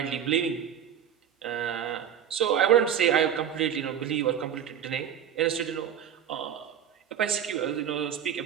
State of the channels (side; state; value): left; quieter; 9.1 dB